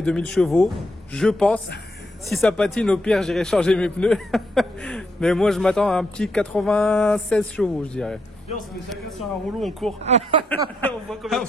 2000 chevaux. Je pense. Si ça patine, au pire, j'irai changer mes pneus. Mais moi, je m'attends à un petit 96 chevaux, je dirais. On se met chacun sur un rouleau, on court. On voit combien de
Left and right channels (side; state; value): both; normal; correlation 0.78